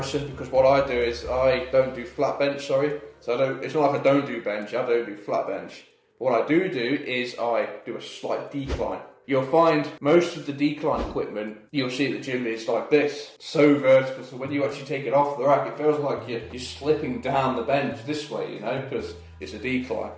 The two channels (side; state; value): both; identical; correlation 1.00